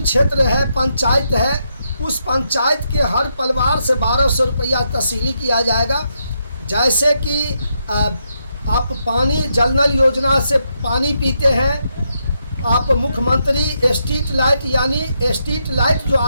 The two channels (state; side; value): inverted; both; correlation -0.81